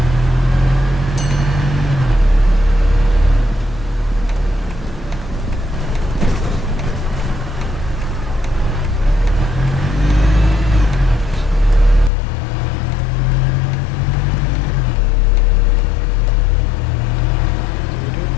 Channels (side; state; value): right; drops out; at 12.1 s